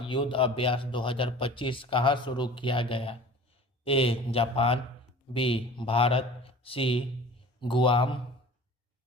युद्ध अभ्यास 2025 कहाँ शुरू किया गया? A Japan, B Bharat, C Guam,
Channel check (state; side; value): normal; both; correlation 0.42